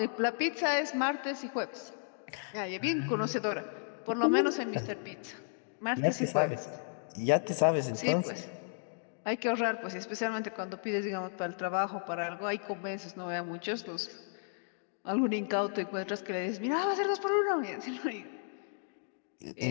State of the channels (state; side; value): silent; right; digital silence